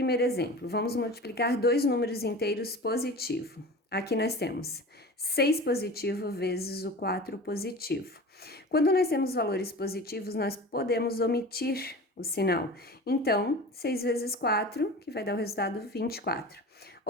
exemplo. Vamos multiplicar dois números inteiros positivo. Aqui nós temos 6 positivo vezes o 4 positivo. Quando nós temos valores positivos, nós podemos omitir o sinal. Então, 6 vezes 4, que vai dar o resultado 24.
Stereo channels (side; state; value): both; normal; correlation 0.35